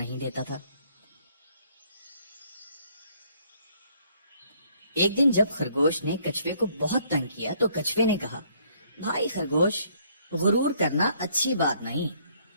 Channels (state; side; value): inverted; both; correlation -0.65